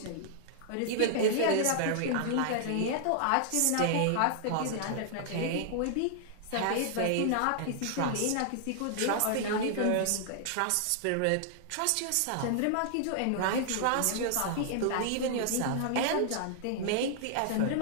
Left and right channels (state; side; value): different; both; correlation -0.01